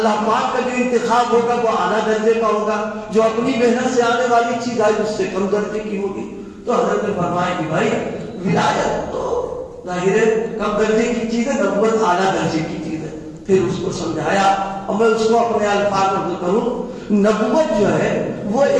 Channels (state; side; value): identical; both; correlation 1.00